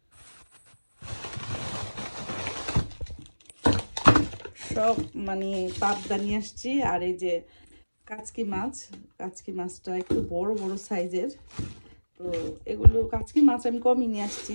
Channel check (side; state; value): both; inverted; correlation -1.00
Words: সব মানে পাবদা নিয়ে আসছি। আর এই যে কাচকি মাছ, কাচকি মাছটা একটু বড় বড় সাইজের। তো এগুলো কাচকি মাছ আমি কমই নিয়ে আসছি,